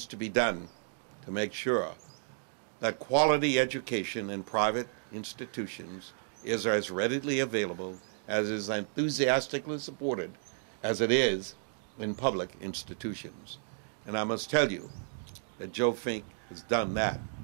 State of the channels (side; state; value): left; silent; digital silence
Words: to be done to make sure that quality education in private institutions is as readily available, as is enthusiastically supported as it is in public institutions. And I must tell you that Joe Fink has done that.